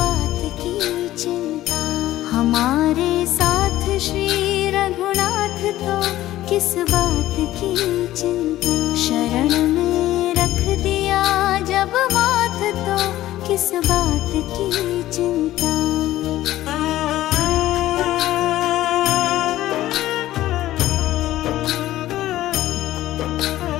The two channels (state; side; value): quieter; right; 14.8 dB